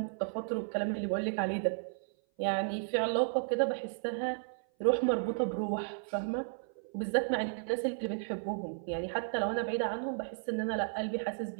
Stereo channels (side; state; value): left; silent; 55 dB below the other